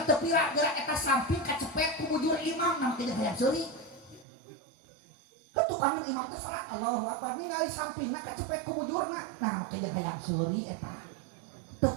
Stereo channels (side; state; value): left; drops out; at 4.2 s